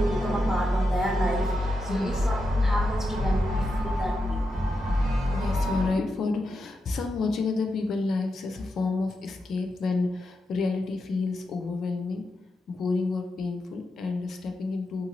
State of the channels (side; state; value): both; normal; correlation 0.87